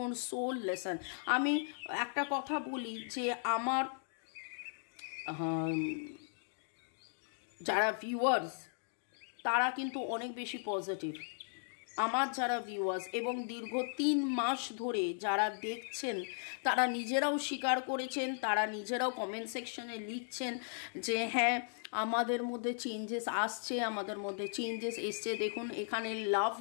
সোল লেসন, আমি একটা কথা বলি যে আমার যারা ভিউয়ার্স তারা কিন্তু অনেক বেশি পজিটিভ। আমার যারা ভিউয়ার্স এবং দীর্ঘ 3 মাস ধরে যারা দেখছেন তারা নিজেরাও স্বীকার করেছেন, তারা নিজেরাও কমেন্ট সেকশনে লিখছেন যে হ্যাঁ আমাদের মধ্যে চেঞ্জেস আসছে, আমাদের মধ্যে চেঞ্জেস এসছে। দেখুন এখানে লাভ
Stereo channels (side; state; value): right; silent; digital silence